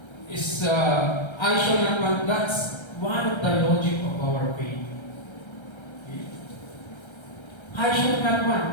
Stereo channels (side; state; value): right; late; 1.3 ms